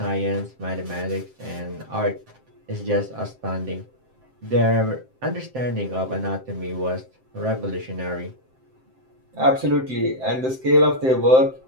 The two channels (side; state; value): left; late; 7.7 ms